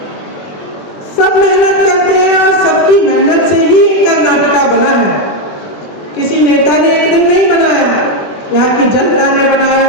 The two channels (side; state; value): right; late; 20 ms